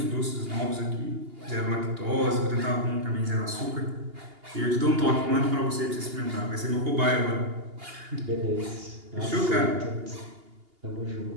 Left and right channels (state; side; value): late; left; 2.8 ms